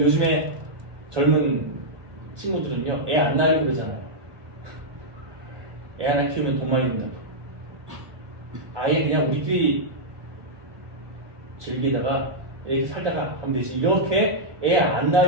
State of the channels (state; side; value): late; left; 1.2 ms